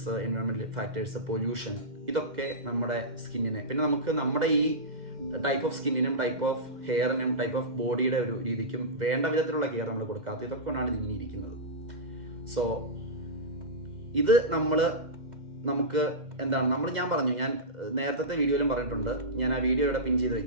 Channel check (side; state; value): left; late; 2.0 ms